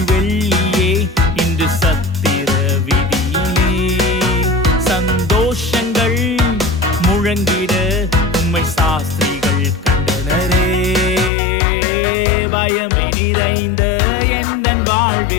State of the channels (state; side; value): drops out; right; at 11.3 s